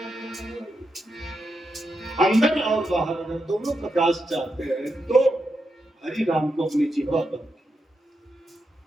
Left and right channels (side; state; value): both; normal; correlation 0.85